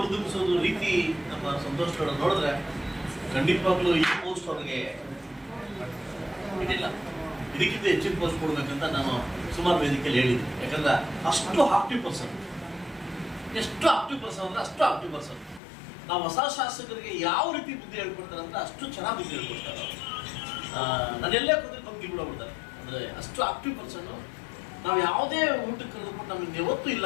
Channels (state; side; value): drops out; right; at 15.6 s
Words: ರೀತಿ ನಮ್ಮ ಸಂತೋಷ್ ಲಾಡ್ ನೋಡಿದ್ರೆ ಖಂಡಿತವಾಗ್ಲೂ ಈ ಪೋಸ್ಟ್ ಅವ್ರಿಗೆ ಇದಿಲ್ಲ, ಇದಕ್ಕಿಂತ ಹೆಚ್ಚಿನ ಪೋಸ್ಟ್ ಕೊಡ್ಬೇಕಂತ ನಾನು ಸುಮಾರು ವೇದಿಕೆಯಲ್ಲಿ ಹೇಳಿದ್ದೆ. ಯಾಕಂದ್ರೆ ಅಷ್ಟು ಆಕ್ಟಿವ್ ಪರ್ಸನ್, ಎಷ್ಟು ಆಕ್ಟಿವ್ ಪರ್ಸನ್ ಅಂದ್ರೆ ಅಷ್ಟು ಆಕ್ಟಿವ್ ಪರ್ಸನ್. ನಾವು ಹೊಸ ಶಾಸಕರಿಗೆ ಯಾವ ರೀತಿ ಬುದ್ಧಿ ಹೇಳ್ಕೊಡ್ತಾರೆ ಅಂದ್ರೆ ಅಷ್ಟು ಚೆನ್ನಾಗಿ ಬುದ್ಧಿ ಹೇಳ್ಕೊಡ್ತಾರೆ. ನಾನೆಲ್ಲೇ ಕೂತ್ಕೊಂಡು ಬಂದು ಗಿಡ್ಬಿಡ್ತಾರೆ ಅಂದ್ರೆ ಅಷ್ಟು ಆಕ್ಟಿವ್ ಪರ್ಸನ್ನು. ನಾವು ಯಾವುದೇ ಊಟಕ್ಕೆ ಕರೆದುಕೊಂಡು ನಮಗೆ ಯಾವತ್ತೂ